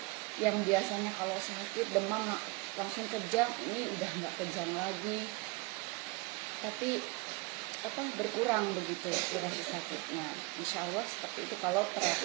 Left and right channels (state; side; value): quieter; left; 26.2 dB